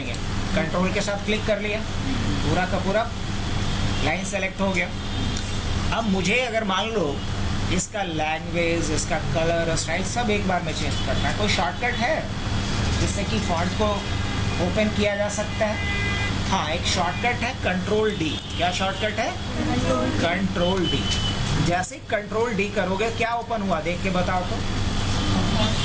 कंट्रोल के साथ क्लिक कर लिया, पूरा का पूरा लाइन सेलेक्ट हो गया। अब मुझे अगर मान लो इसका लैंग्वेज, इसका कलर, स्टाइल सब एक बार में चेंज करना है, कोई शॉर्टकट है जिससे कि फॉन्ट को ओपन किया जा सकता है? हाँ, एक शॉर्टकट है कंट्रोल डी। क्या शॉर्टकट है? Control D. जैसे कंट्रोल डी करोगे क्या ओपन हुआ देख के बताओ तो।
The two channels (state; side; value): identical; both; correlation 1.00